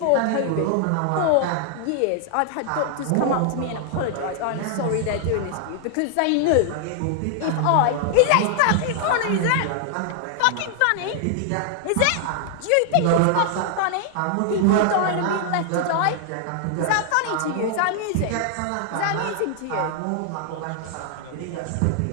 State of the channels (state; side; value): different; both; correlation 0.00